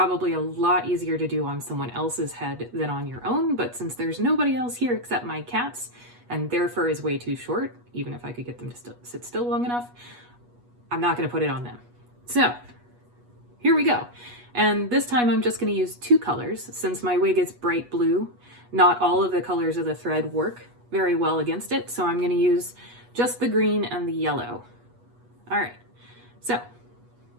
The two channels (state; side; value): late; left; 8.2 ms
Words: a lot easier to do on someone else's head than on your own, but since there's nobody else here except my cats, and their fur is way too short, even if I could get them to sit still long enough, I'm not gonna put it on them. So, here we go. And this time I'm just gonna use 2 colors. Since my wig is bright blue, not all of the colors of the thread work very well against it, so I'm gonna use just the green and the yellow. All right, so